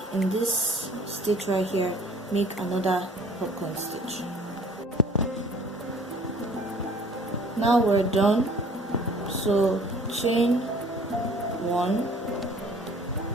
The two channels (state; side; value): normal; both; correlation 0.52